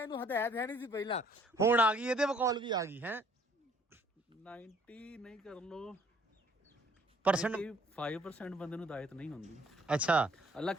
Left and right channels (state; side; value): normal; both; correlation 0.60